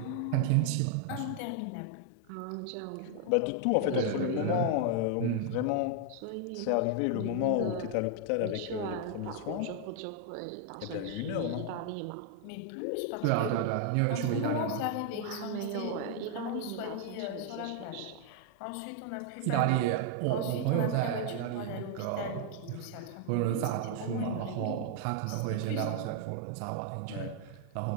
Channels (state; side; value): different; both; correlation 0.00